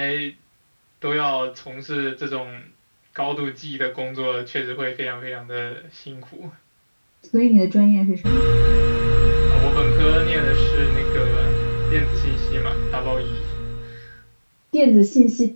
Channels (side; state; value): both; inverted; correlation -1.00